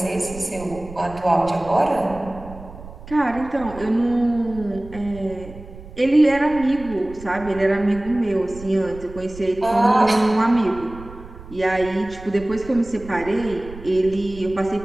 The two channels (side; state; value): right; noise; rumble, 16 dB below the sound